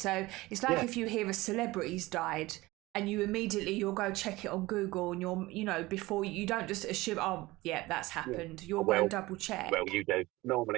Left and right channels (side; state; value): left; quieter; 19.8 dB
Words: it's like yeah, if you hear a celebrity's died and you'll go check it on Google and before you don't just assume, oh yeah, that's yeah. happened. You'll go and Well, double check. well, you do.